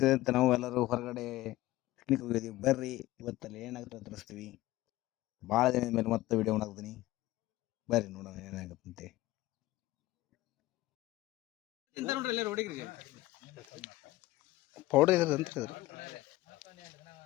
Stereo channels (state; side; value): quieter; right; 17.3 dB